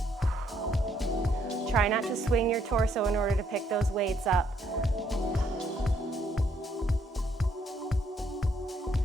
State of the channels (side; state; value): both; normal; correlation 0.70